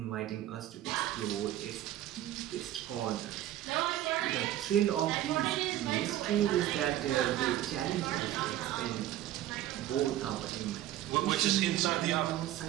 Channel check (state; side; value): quieter; left; 13.4 dB